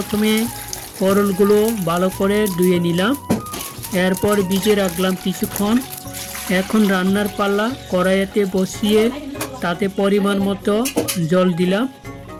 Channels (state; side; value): identical; both; correlation 1.00